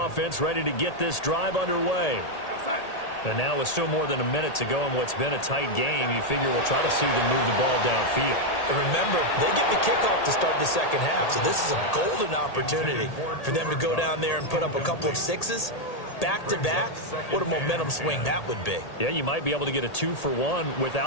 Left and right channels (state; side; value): late; right; 1.8 ms